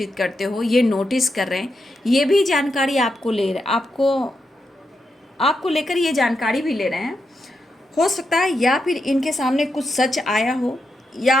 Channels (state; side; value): normal; both; correlation 0.84